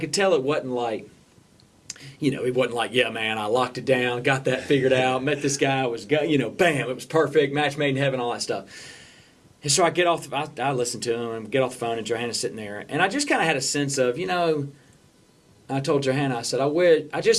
tell it wasn't like, it wasn't like, yeah, man, I locked it down, got that figured out, met this guy, bam, it was perfect, match made in heaven, all that stuff. And so I get off, I listen to him and get off the phone, and Johanna's sitting there, and I just kind of had a sense of, I told Johanna, I said,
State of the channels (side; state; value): both; identical; correlation 1.00